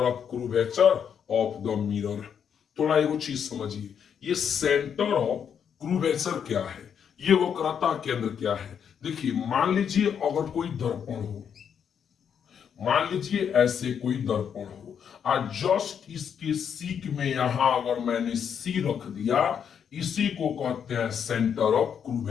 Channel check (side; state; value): right; quieter; 7.8 dB